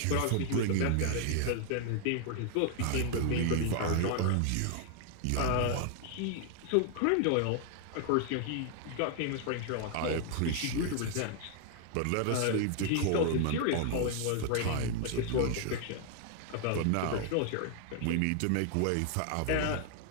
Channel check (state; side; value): different; both; correlation 0.00